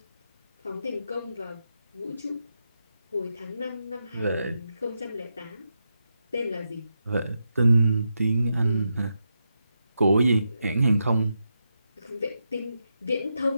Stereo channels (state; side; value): inverted; both; correlation -0.85